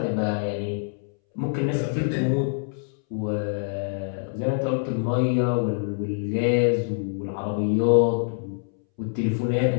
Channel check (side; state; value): right; silent; 62 dB below the other